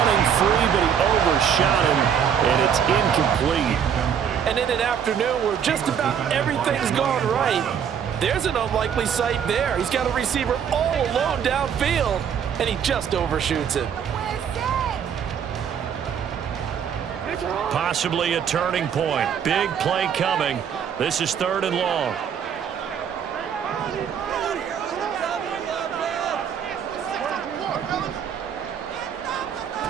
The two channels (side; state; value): left; quieter; 8.0 dB